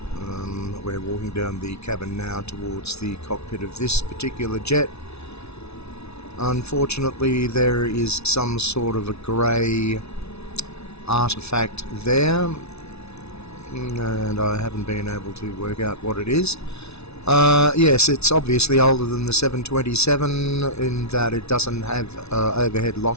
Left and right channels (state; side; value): late; right; 0.80 ms